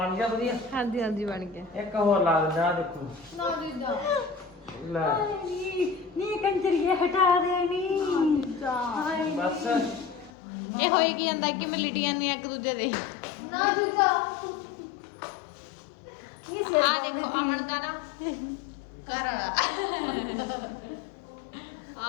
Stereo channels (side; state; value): right; drops out; at 10.3 s